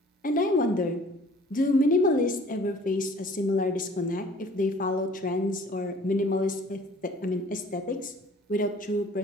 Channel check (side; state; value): both; normal; correlation 0.51